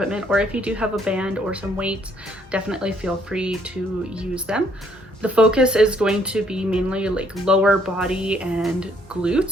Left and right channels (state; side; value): normal; both; correlation 0.66